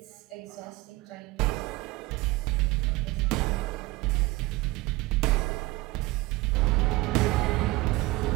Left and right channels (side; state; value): left; quieter; 20.7 dB